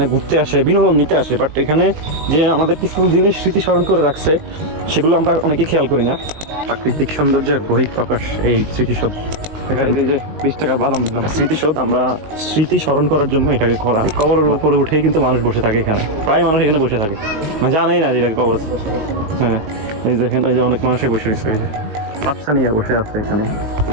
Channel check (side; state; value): left; late; 19 ms